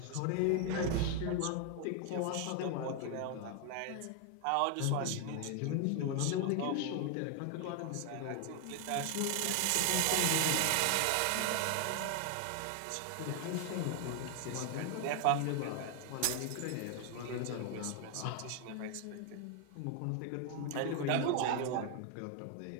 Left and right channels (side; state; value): both; different; correlation 0.00